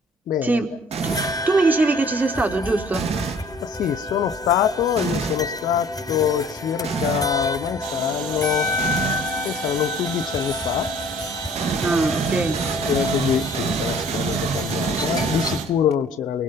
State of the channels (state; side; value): normal; both; correlation 0.53